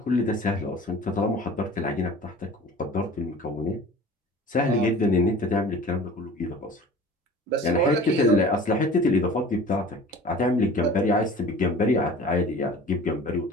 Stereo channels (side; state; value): both; normal; correlation 0.43